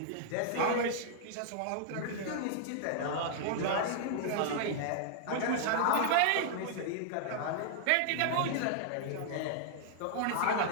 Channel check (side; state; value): both; different; correlation -0.01